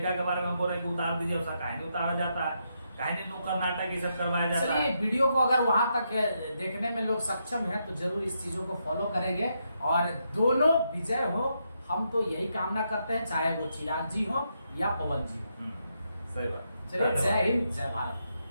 के बारे में हमको रहे कि उतार दीजिए, उसका काहे नहीं उतारा जाता है, काहे नहीं नुक्कड़ नाटक ये सब करवाया जाता है। चलिए, वीडियो को अगर वहां तक देखने में लोग सक्षम हैं तो जरूर इस चीजों को फॉलो करेंगे और दोनों विजय हो, हम तो यही कामना करते हैं, चाहे वो चिराग जी हो या पवन जी हो। सही बात। चलिए, जय हिंद, जय भारत।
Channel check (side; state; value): both; inverted; correlation -0.81